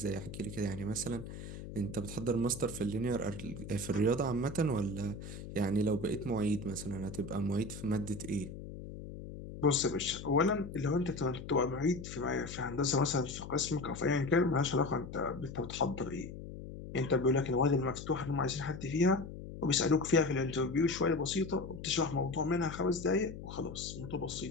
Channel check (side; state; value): left; noise; hum, 11 dB below the sound